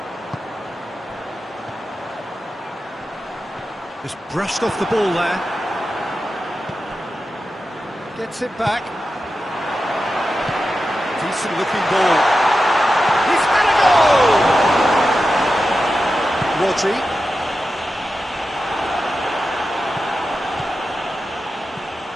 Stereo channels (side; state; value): both; normal; correlation 0.91